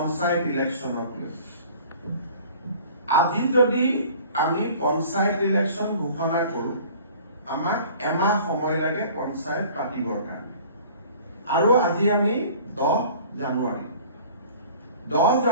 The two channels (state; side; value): inverted; both; correlation -0.48